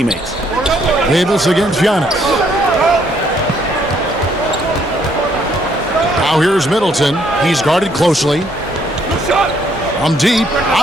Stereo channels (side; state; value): both; normal; correlation 0.68